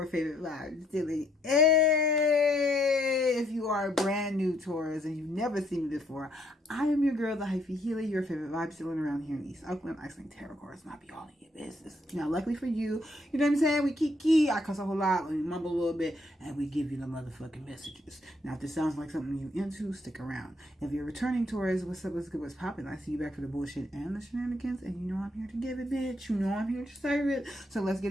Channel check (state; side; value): normal; both; correlation 0.70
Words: favorite vibe silly. Hey, if you are brand new Taurus and you've never seen me before, I am your girl, the Hyphy healer, your favorite vibe stealing around here in East Oakland. I sling tarot cards, not be all in your business. Now, luckily for you, you know what I'm saying? We kiki, I cuss a whole lot, we mumble a little bit, and we give you the motherfucking messages. Now, if this sounds like something you into, stick around. If you're returning Taurus, what's up, what's good, what's popping? I see you back for the bullshit and the shenanigans, and you know I'm here to give it, bitch. You know I'm here to serve it. So let's